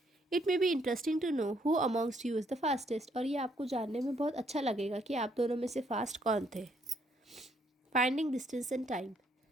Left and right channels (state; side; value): normal; both; correlation 0.70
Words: It may be interesting to know who amongst you is the fastest, और ये आपको जानने में बहुत अच्छा लगेगा कि आप दोनों में से फास्ट कौन थे। Finding distance and time.